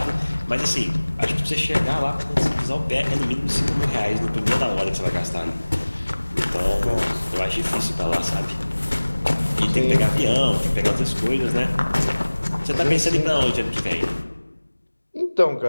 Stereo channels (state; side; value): inverted; both; correlation -1.00